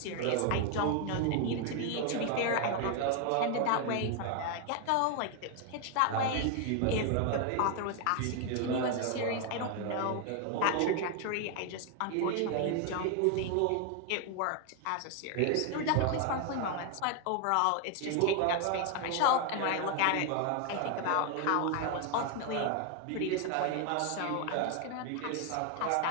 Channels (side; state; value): both; different; correlation 0.01